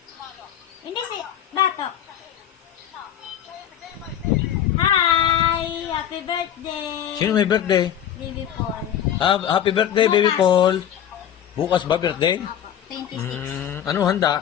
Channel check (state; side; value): quieter; right; 10.0 dB